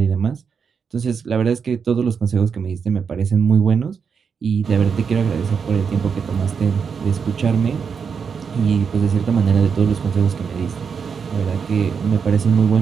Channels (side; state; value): left; quieter; 6.2 dB